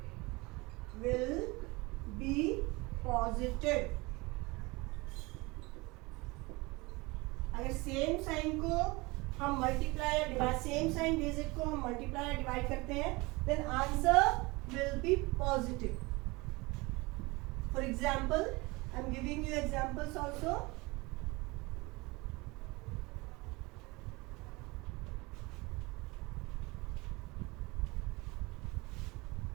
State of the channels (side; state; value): left; quieter; 24.1 dB